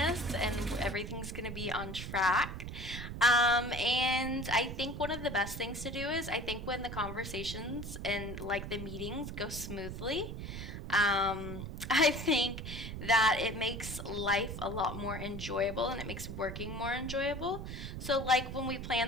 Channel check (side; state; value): right; noise; rumble, 7 dB below the sound